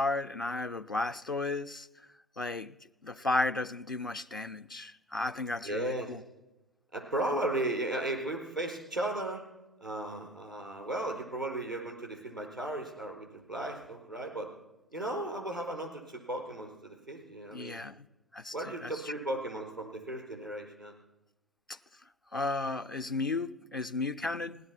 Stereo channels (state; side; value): normal; both; correlation 0.47